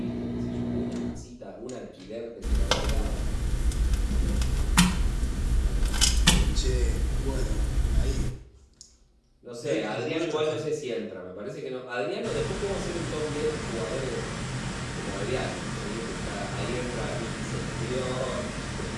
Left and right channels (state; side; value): identical; both; correlation 1.00